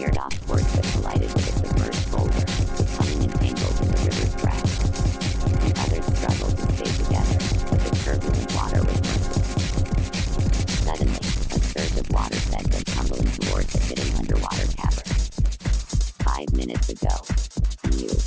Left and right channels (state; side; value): identical; both; correlation 1.00